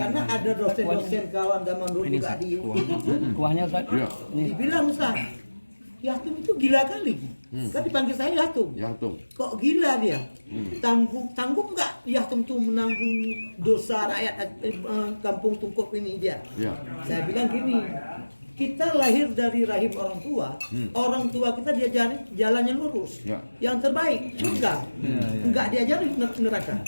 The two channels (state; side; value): inverted; both; correlation -1.00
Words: ada dosen-dosen kawan zaman dulu juga di kuahnya Ustaz. Iya. dibilang Ustaz, Yatum itu gila kali. Kan dipanggil saya Yatum. Ya tuh. Kok gila dia? Tanggung nggak Yatum tuh menanggung dosa rakyat kampung Tungkuk ini dia? Ya. Saya bilang gini, kita lahir dari rahim orang tua kita diajari jalannya lurus, Ya. yang terbaik surga, nggak diajari neraka.